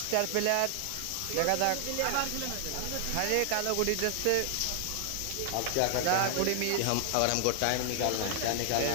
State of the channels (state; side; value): different; both; correlation 0.00